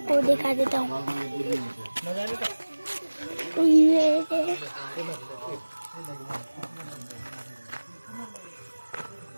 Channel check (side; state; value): both; inverted; correlation -1.00